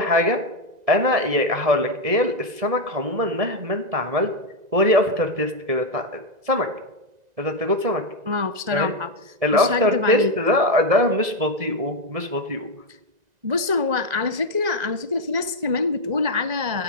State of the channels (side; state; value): left; late; 2.0 ms